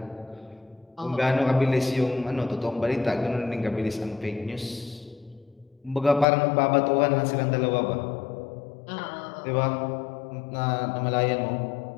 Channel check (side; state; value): right; drops out; at 6.2 s